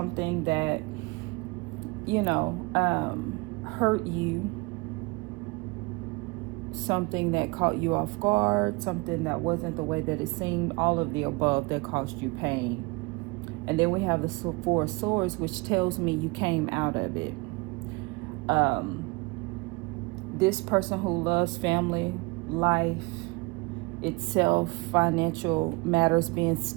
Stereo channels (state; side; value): quieter; left; 26.3 dB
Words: that hurt you, something that caught you off guard, something that wasn't the way that it seemed, all of the above that caused you pain. And then we have the Four of Swords, which tells me you came out of it. This person who loves family, life itself, financial matters being